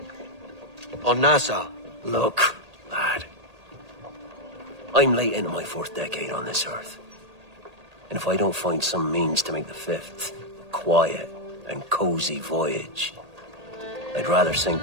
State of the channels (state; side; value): late; left; 1.8 ms